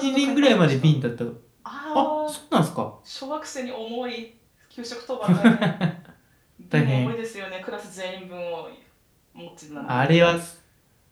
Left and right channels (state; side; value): identical; both; correlation 1.00